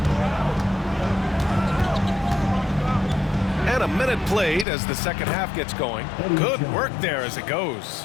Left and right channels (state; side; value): drops out; right; at 4.7 s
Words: And a minute played as the second half gets going. Good work there as it goes.